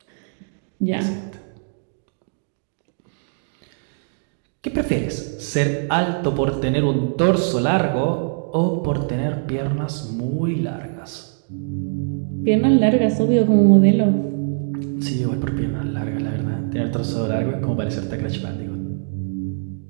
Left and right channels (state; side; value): silent; left; digital silence